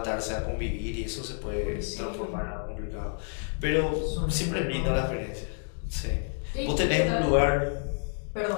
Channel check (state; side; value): silent; right; 56 dB below the other